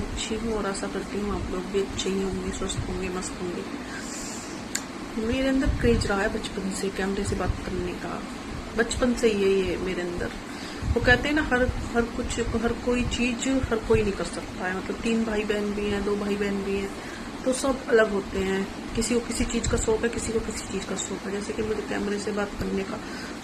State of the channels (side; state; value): both; identical; correlation 1.00